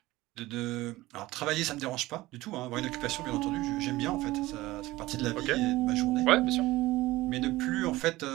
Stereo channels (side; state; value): left; quieter; 18.4 dB